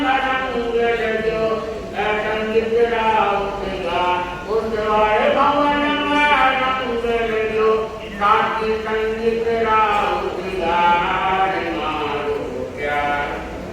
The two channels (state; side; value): identical; both; correlation 1.00